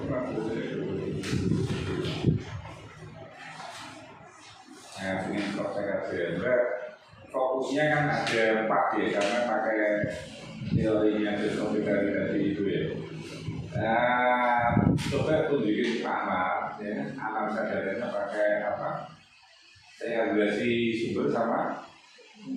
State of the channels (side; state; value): both; identical; correlation 1.00